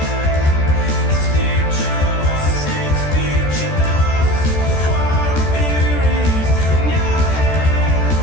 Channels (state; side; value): late; right; 14 ms